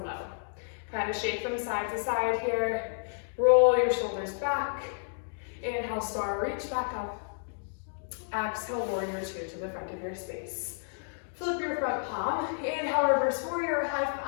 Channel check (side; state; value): right; silent; digital silence